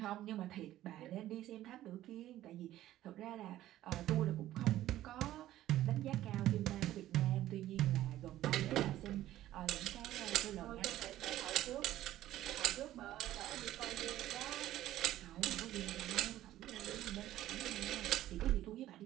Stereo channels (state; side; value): quieter; left; 13.9 dB